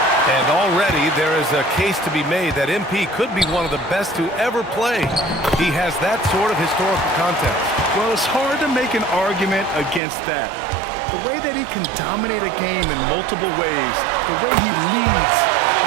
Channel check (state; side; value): drops out; left; at 10.0 s